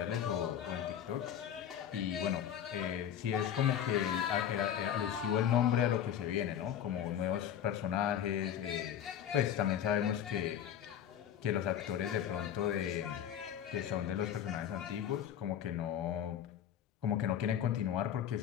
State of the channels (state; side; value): quieter; right; 9.7 dB